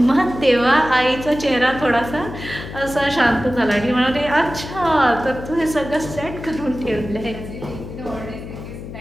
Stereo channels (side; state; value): left; noise; hum, 11 dB below the sound